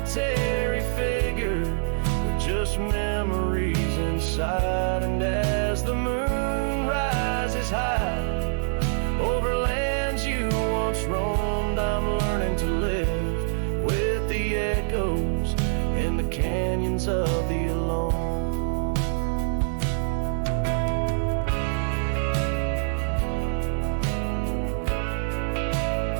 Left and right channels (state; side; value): silent; left; 61 dB below the other